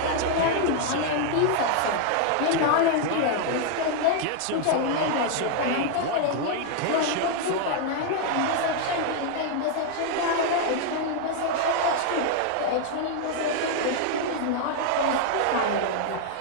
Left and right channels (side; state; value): both; different; correlation 0.00